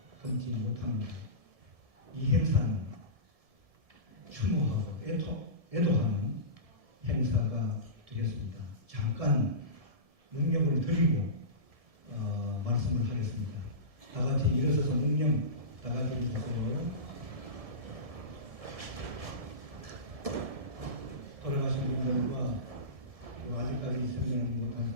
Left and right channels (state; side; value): late; left; 1.7 ms